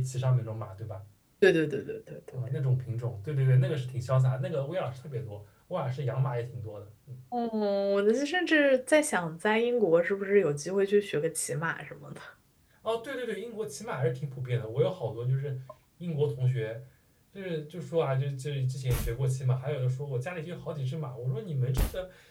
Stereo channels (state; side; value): identical; both; correlation 1.00